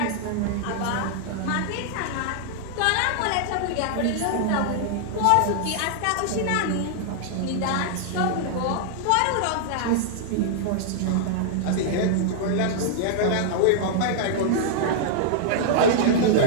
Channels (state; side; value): different; both; correlation -0.01